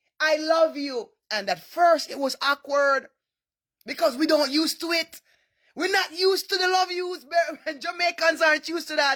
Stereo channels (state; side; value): identical; both; correlation 1.00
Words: I love you. And at first it was awkward because we don't used to it. We're not used to the love yous. Jamaicans aren't used to